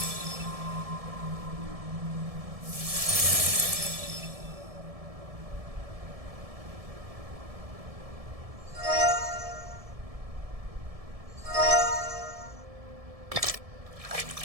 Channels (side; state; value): left; late; 1.7 ms